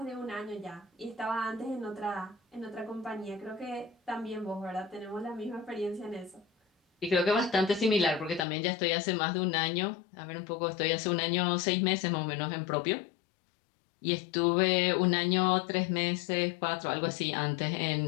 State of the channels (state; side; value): drops out; right; at 8.5 s